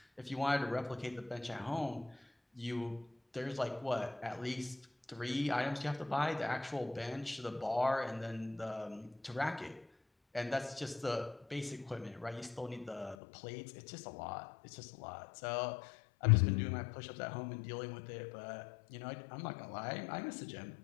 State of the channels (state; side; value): drops out; right; at 13.2 s